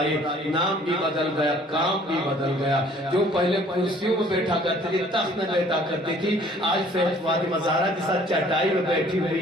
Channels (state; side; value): normal; both; correlation 0.56